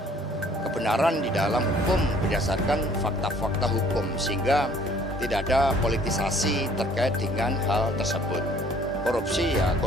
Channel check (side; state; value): both; normal; correlation 0.58